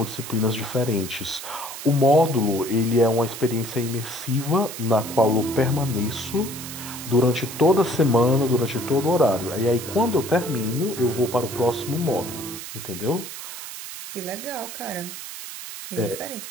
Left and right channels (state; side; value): noise; right; hiss, 10 dB below the sound